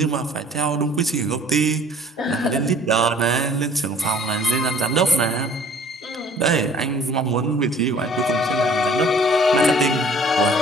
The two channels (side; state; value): both; normal; correlation 0.52